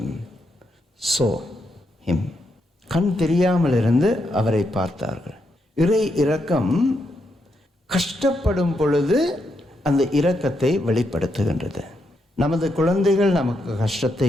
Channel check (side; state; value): both; normal; correlation 0.81